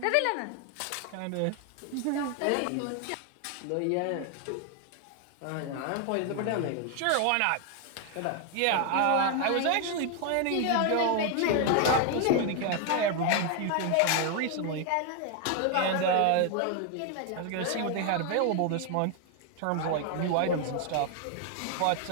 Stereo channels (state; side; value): different; both; correlation 0.00